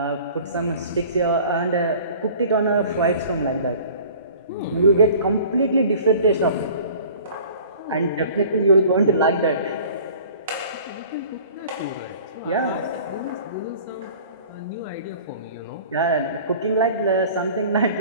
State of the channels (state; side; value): inverted; both; correlation -0.46